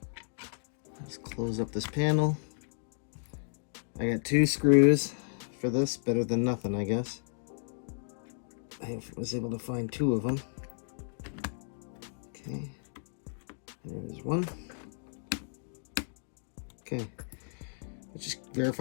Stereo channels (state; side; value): silent; right; digital silence